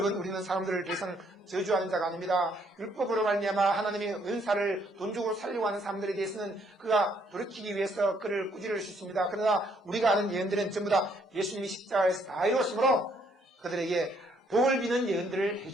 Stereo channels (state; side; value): normal; both; correlation 0.68